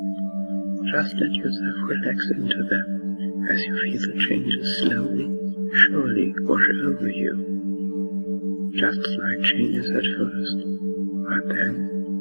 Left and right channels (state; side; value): inverted; both; correlation -1.00